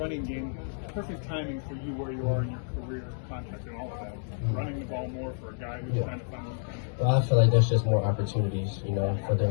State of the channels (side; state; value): right; silent; digital silence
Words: game perfect timing for you where you are in your career, contract, and all of that? Running the ball more for a guy who's trying to find one. Well, I feel like there's just more opportunities,